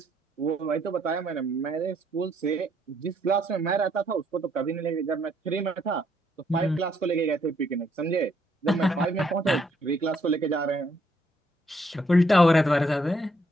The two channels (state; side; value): normal; both; correlation 0.71